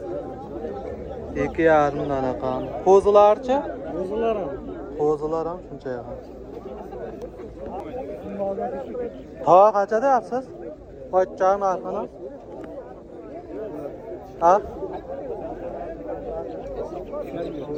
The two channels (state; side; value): identical; both; correlation 1.00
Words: 2,5 mingdan ekan. Qo'zilarchi? Qo'zilar ham shuncha ekan. Tava qancha deyapsiz? Qo'ychang narxini. Ha?